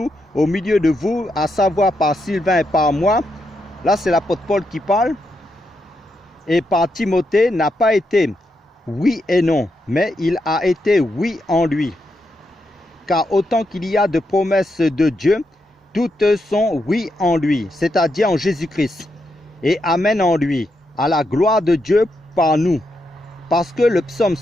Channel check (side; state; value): both; normal; correlation 0.82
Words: au milieu de vous, à savoir par Sylvain et par moi, là c'est l'apôtre Paul qui parle, et par Timothée, n'a pas été oui et non, mais il a été oui en lui. Car autant qu'il y a de promesses de Dieu, toutes sont oui en lui, c'est-à-dire en Jésus-Christ, et amen en lui, à la gloire de Dieu par nous. Parce que le psaume